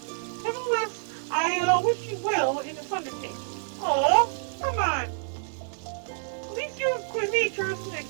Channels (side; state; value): left; silent; 59 dB below the other